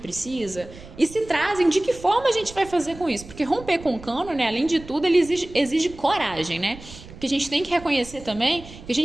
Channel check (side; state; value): right; noise; rumble, 17 dB below the sound